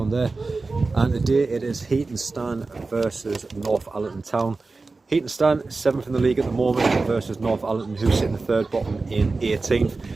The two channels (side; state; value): left; quieter; 3.8 dB